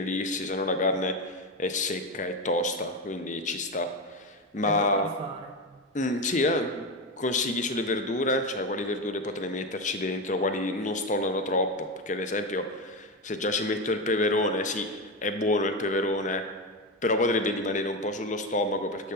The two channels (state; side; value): normal; both; correlation 0.16